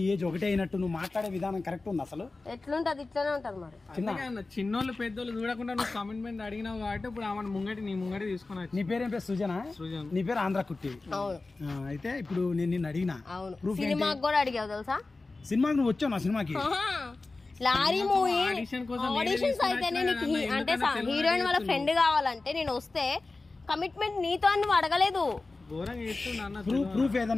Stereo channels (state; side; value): quieter; right; 3.5 dB